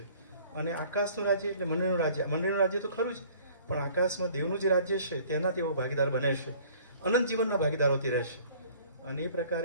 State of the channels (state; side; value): inverted; both; correlation -0.53